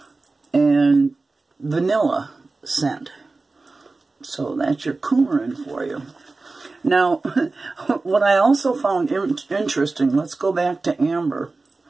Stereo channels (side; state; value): left; quieter; 3.6 dB